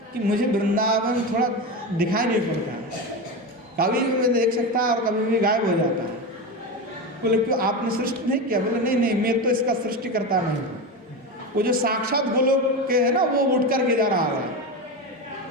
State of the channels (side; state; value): both; normal; correlation 0.20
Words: कि मुझे वृंदावन थोड़ा दिखाई नहीं पड़ता है, कभी भी मैं देख सकता है और कभी भी गायब हो जाता है। बोले क्यों, आपने सृष्टि नहीं किया। बोले नहीं नहीं, मैं तो इसका सृष्टि करता नहीं हूँ। वो जो साक्षात गोलोक के है ना, वो उठ कर के जा रहा है,